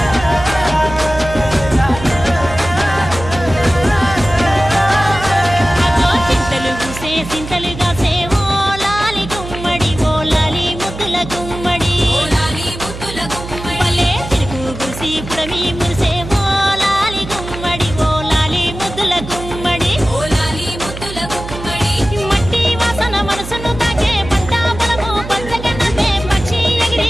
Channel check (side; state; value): right; noise; hum, 10 dB below the sound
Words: సింతలుగా సేవో లాలి గుమ్మడి ఓ లాలి ముద్దుల గుమ్మడి పల్లె తిరుగు గుసి పుడమి మురిసేవో లాలి గుమ్మడి ఓ లాలి ముద్దుల గుమ్మడి మట్టి వాసన మనసును తాకే పంట పొలము పంచగన్నదే పక్షి